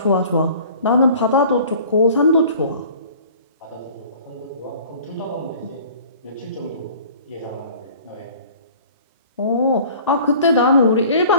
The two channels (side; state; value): both; inverted; correlation -0.48